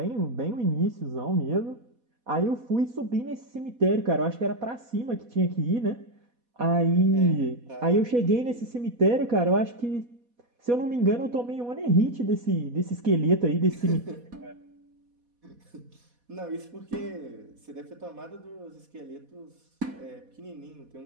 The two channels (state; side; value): late; left; 4.1 ms